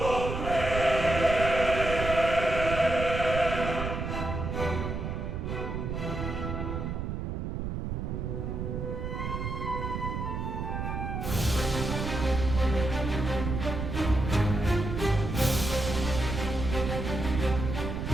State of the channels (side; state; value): right; noise; rumble, 3 dB below the sound